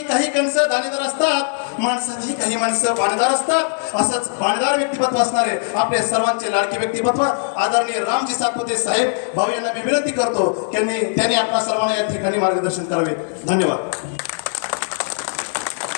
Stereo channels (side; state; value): right; silent; digital silence